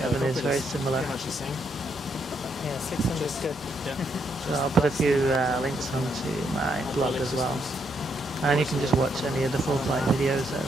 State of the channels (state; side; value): normal; both; correlation 0.76